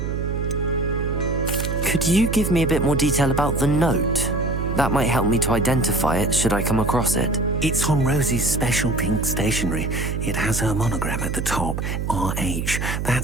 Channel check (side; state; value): right; noise; hum, 2 dB below the sound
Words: Could you give me a bit more detail about the note? That might help me to identify it should I come across it. It's on Rosie's special pink stationery. It has her monogram at the top, RH.